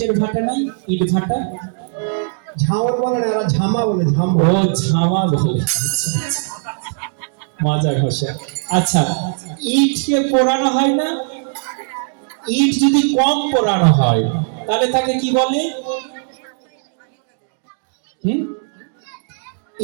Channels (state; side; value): silent; left; digital silence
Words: ভাটা নাই? ইট ভাটা ঝামর বলে না, এরা ঝামা বলে, ঝামা। ও ঝামা বলে, আচ্ছা, আচ্ছা। মাজা ঘষা। আচ্ছা, ইটকে পোড়ানো হয় না? ইট যদি কম পোড়ানো হয় তাহলে তাকে কি বলে?